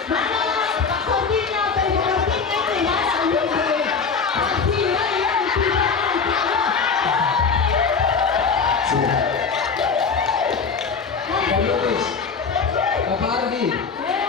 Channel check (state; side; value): quieter; right; 5.4 dB